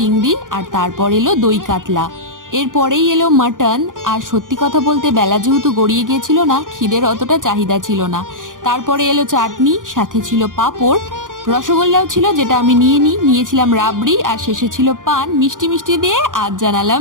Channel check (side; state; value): left; late; 0.89 ms